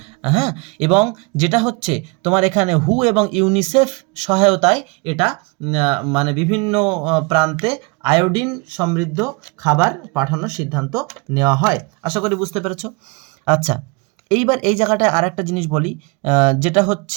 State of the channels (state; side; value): quieter; left; 29.5 dB